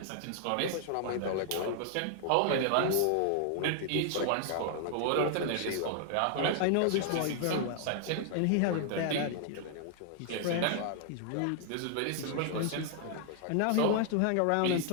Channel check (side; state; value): both; different; correlation 0.00